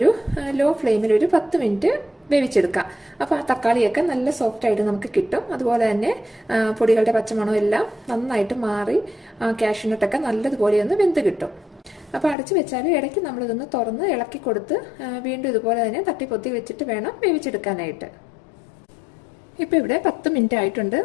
ലോ ഫ്ലെയിമിൽ ഒരു 10 മിനിറ്റ് വേവിച്ചെടുക്കാം. അപ്പോൾ ആ തക്കാളിയൊക്കെ നല്ല സോഫ്റ്റായിട്ട് നമുക്ക് കിട്ടും. അതുപോലെ തന്നെ പൊടികളുടെ പച്ചമണം എല്ലാം നന്നായിട്ട് മാറി കാഷ്യൂനട്ടൊക്കെ നല്ലതുപോലെ ഒന്ന് വെന്ത് കിട്ടും. അപ്പോൾ അടച്ചു വെച്ചാൽ ഇടയ്ക്ക് നമ്മളിതൊന്ന് തുറന്ന് ഇളക്കി കൊടുത്ത് വീണ്ടും ഇതുപോലെ തന്നെ തട്ടിപ്പൊത്തി വെച്ചിട്ട് വേണം വേവിച്ചെടുക്കാനായിട്ട്. ഇപ്പോൾ ഇവിടെ 10 മിനിറ്റ് ആയിട്ടുണ്ട്.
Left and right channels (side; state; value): right; drops out; at 12.4 s